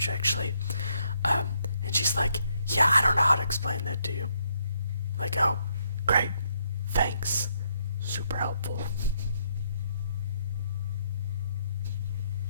actually. And she's like, yeah, I don't know how to explain that to you. Like, oh, great, thanks, super helpful.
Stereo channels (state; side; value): inverted; both; correlation -0.74